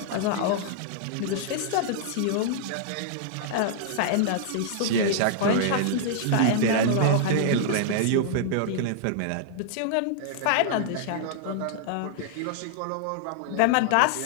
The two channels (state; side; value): different; both; correlation -0.01